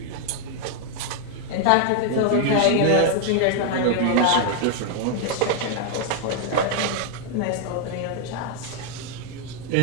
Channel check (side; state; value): both; different; correlation 0.00